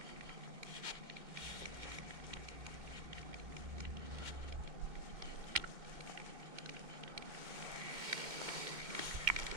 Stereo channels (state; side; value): late; left; 2.2 ms